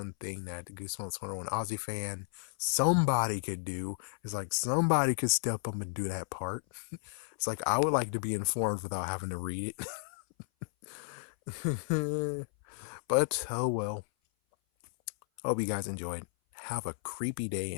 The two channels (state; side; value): silent; right; 56 dB below the other